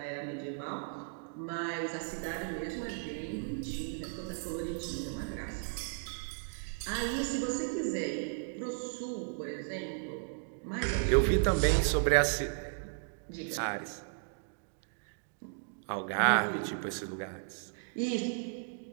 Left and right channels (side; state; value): left; silent; digital silence